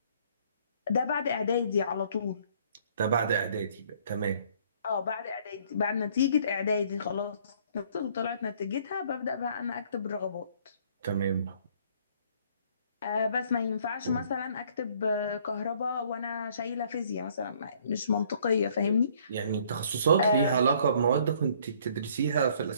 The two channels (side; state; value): both; inverted; correlation -0.61